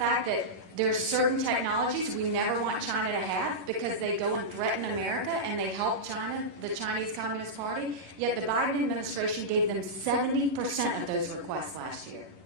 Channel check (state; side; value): late; left; 11 ms